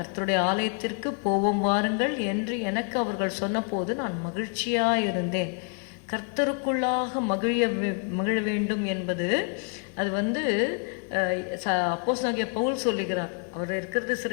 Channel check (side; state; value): right; quieter; 39.5 dB